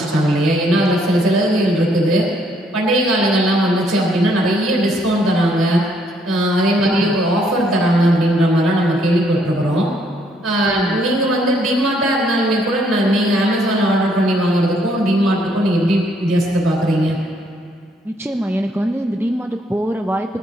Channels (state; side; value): normal; both; correlation 0.69